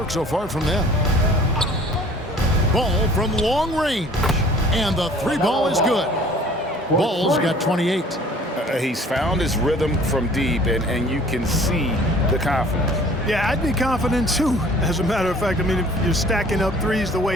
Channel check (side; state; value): both; normal; correlation 0.51